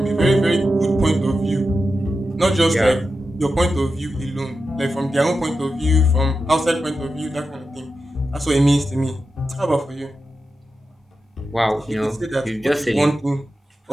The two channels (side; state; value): both; normal; correlation 0.90